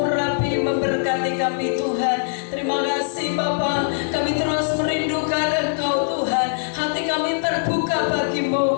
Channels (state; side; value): silent; right; digital silence